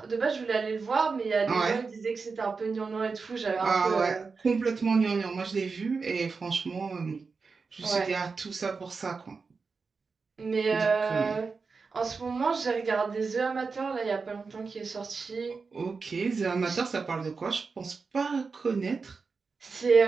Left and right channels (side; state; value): left; quieter; 4.7 dB